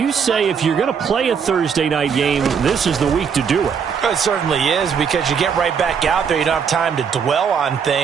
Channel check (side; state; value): left; quieter; 6.7 dB